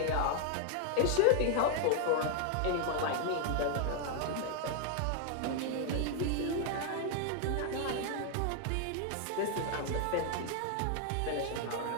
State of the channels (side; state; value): both; different; correlation 0.00